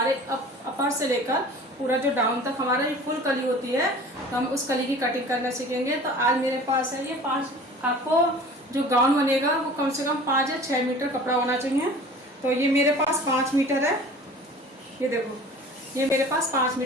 अपर से लेकर पूरा जो डाउन तक हमारा ये फुल कली होती है, तो हम उस कली की कटिंग करना सीखेंगे। तो आज मेरे पास है ये 5, आपको जो गाउन बनेगा वो कम से कम 5 या 6 मीटर कपड़ा होना चाहिए। तो ये मेरे पास 5 मीटर है, ये देखो, ये मेरे पास 5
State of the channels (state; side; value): normal; both; correlation 0.43